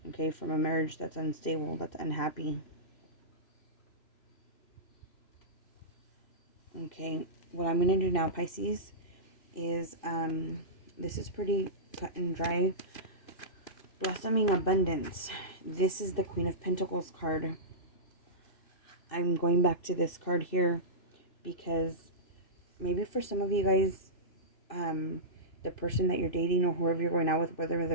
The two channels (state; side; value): late; right; 3.0 ms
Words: Okay, from a marriage that's unstable, that's unhappy. Okay, what I'm going to do now, Pisces, is, this is pretty cut and dry. Blossoming abundance. This is the Queen of Pentacles card. I'm going back to this card here because maybe for some of you guys, the person that you're dating or whoever you're going out with, whether